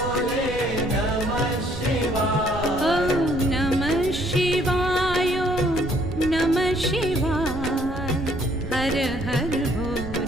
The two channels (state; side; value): noise; right; rumble, 9 dB below the sound